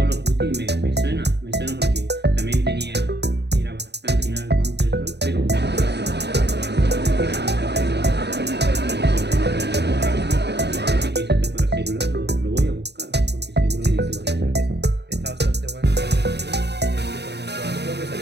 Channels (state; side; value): late; left; 0.49 ms